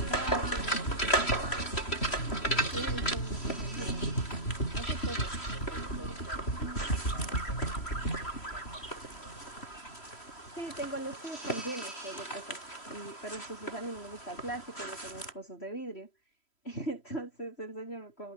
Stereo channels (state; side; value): late; right; 3.1 ms